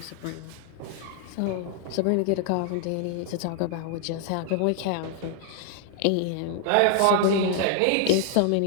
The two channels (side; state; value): both; different; correlation 0.00